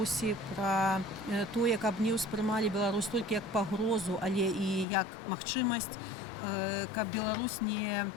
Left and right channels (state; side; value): drops out; right; at 4.9 s